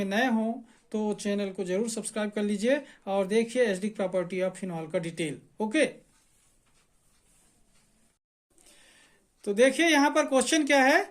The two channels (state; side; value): identical; both; correlation 1.00